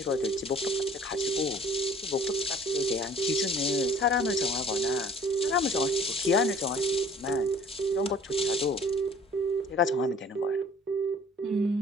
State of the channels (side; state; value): both; normal; correlation 0.52